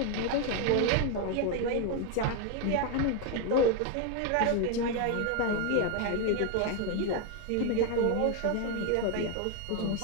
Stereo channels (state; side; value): different; both; correlation 0.01